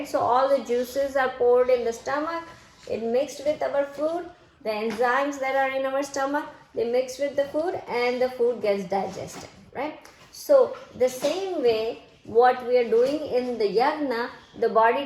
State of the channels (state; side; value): identical; both; correlation 1.00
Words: So all the juices are poured in the stomach, it mixed with our food, the enzymes that are in our stomach, they mix with the food and the food gets digested, right? So the same way what we are doing in the yagna, the body